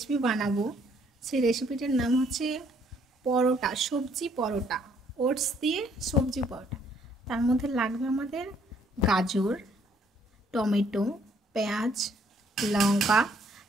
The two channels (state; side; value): normal; both; correlation 0.65